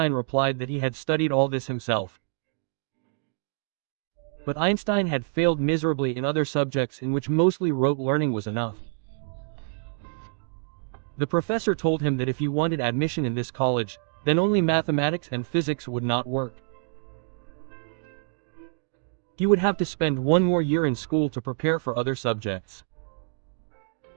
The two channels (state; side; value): silent; left; 60 dB below the other